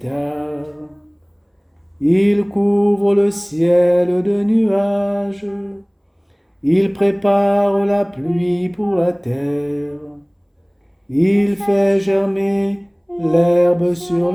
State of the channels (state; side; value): identical; both; correlation 1.00